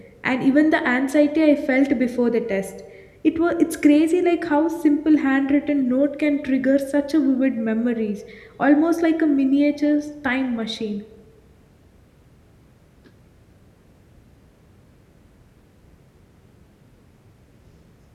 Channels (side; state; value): both; identical; correlation 1.00